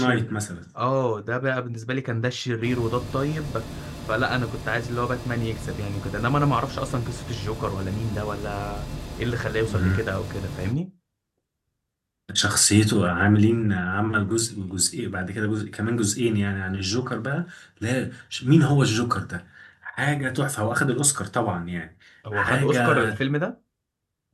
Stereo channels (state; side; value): identical; both; correlation 1.00